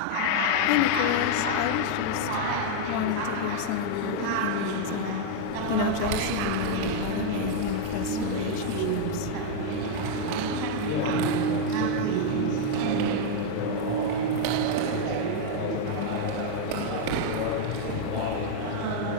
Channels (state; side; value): different; both; correlation 0.00